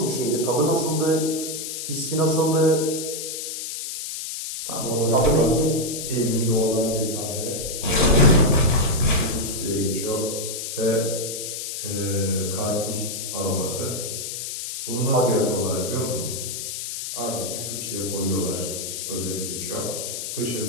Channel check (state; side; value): noise; left; hiss, 6 dB below the sound